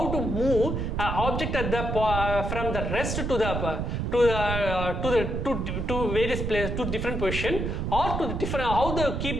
to move object at from the rest to various places, to different position, or to the different how to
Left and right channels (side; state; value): right; noise; rumble, 2 dB below the sound